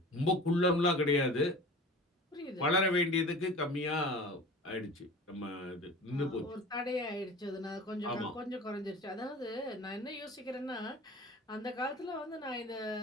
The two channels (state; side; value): normal; both; correlation 0.39